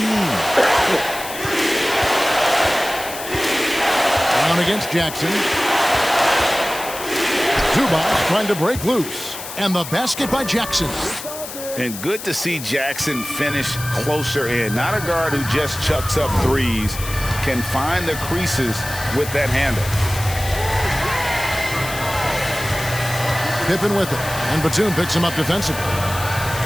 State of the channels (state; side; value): noise; left; hiss, 10 dB below the sound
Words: Down against Jackson. Zubac trying to break loose. And the basket by Jackson. And good to see Jackson finish closer in. Not a guard who just chucks up threes. Can find the creases with that handle. Pippen with it. And Batum picks him up defensively.